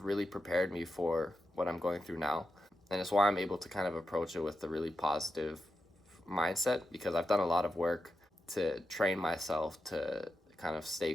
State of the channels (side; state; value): both; normal; correlation 0.88